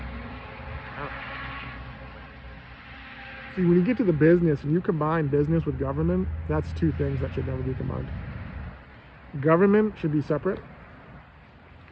See, when you get to the business and you combine business with government, that's two things that should never be combined. Government should be separate.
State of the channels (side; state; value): both; identical; correlation 1.00